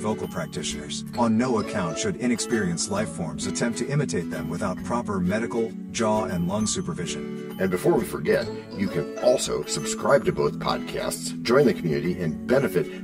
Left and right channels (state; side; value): identical; both; correlation 1.00